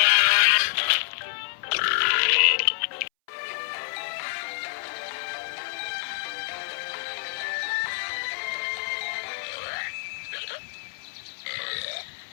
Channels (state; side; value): silent; right; 60 dB below the other